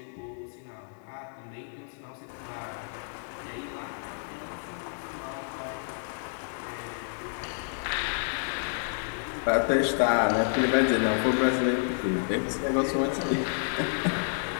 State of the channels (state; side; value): silent; right; 58 dB below the other